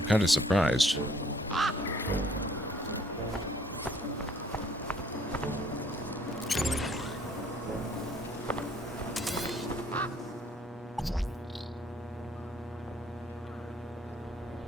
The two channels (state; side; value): normal; both; correlation 0.61